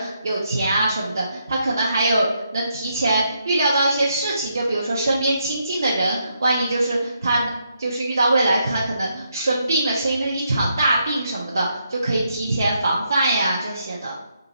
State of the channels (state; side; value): inverted; both; correlation -0.77